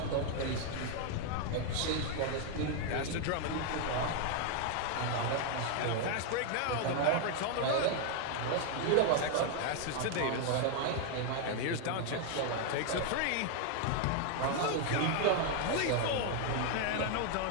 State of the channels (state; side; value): different; both; correlation 0.00